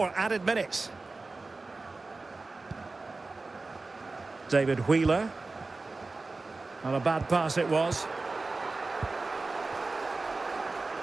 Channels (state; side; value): quieter; left; 3.6 dB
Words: added minutes. David Wheeler. Not a bad pass it was.